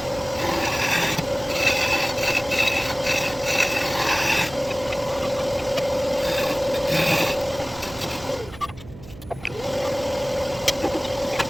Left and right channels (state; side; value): noise; right; hum, 17 dB below the sound